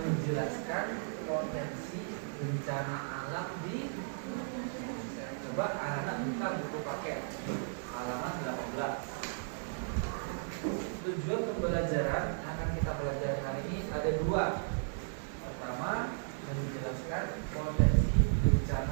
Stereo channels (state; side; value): silent; left; digital silence